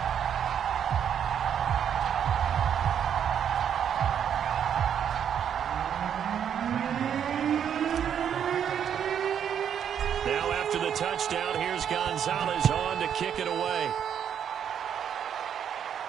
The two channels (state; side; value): quieter; left; 8.7 dB